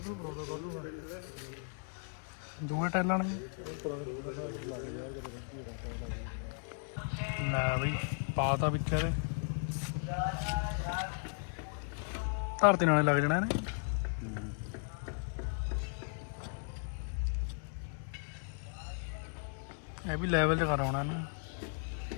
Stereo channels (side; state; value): right; silent; 54 dB below the other